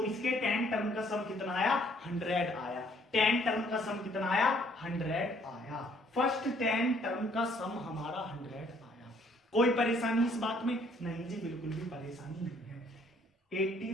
इसके 10 टर्म का सम कितना आया, 100 आया। 10 टर्म का सम कितना आया, 100 आया। फर्स्ट 10 टर्म का सम हमारा 100 आया। कोई परेशानी इस बात में नहीं जी, बिल्कुल भी परेशानी नहीं है।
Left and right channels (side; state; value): both; normal; correlation 0.63